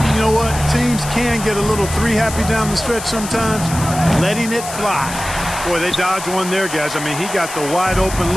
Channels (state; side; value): noise; left; hiss, 10 dB below the sound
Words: You know what? Teams can get a little three-happy down the stretch sometimes, letting it fly. Boy, they dodged one there, guys. I mean, he got the wide-open